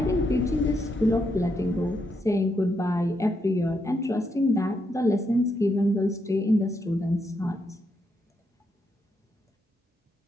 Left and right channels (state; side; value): normal; both; correlation 0.79